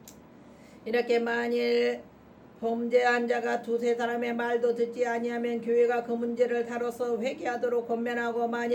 이렇게 만일 범죄한 자가 두세 사람의 말도 듣지 아니하면 교회가 그 문제를 다뤄서 회개하도록 권면하고,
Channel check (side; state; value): both; identical; correlation 1.00